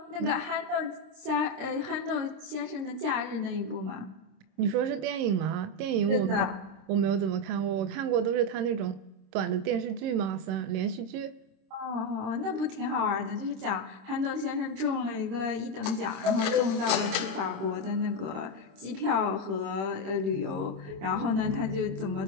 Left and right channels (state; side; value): late; left; 26 ms